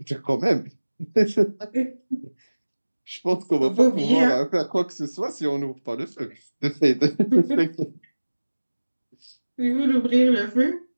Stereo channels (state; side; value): inverted; both; correlation -1.00